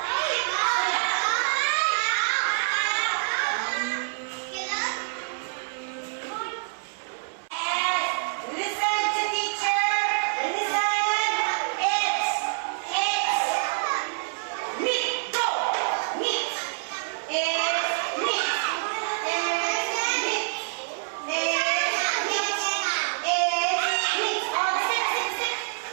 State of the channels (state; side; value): silent; left; 61 dB below the other